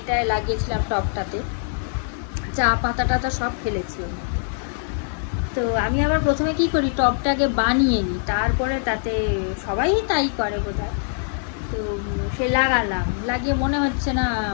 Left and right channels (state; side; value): silent; right; 60 dB below the other